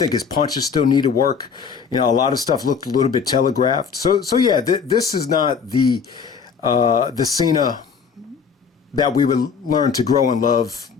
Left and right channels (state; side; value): quieter; right; 6.2 dB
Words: his punches still need to work. A lot of stuff looked a little bit telegraphed. So yeah, this is not the Cena that we would learn to grow and love,